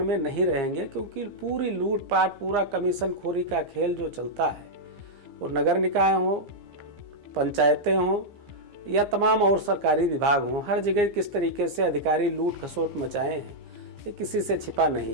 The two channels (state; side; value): late; left; 15 ms